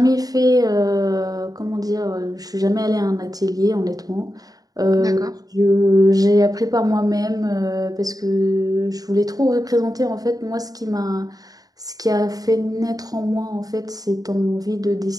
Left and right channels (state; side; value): late; left; 0.18 ms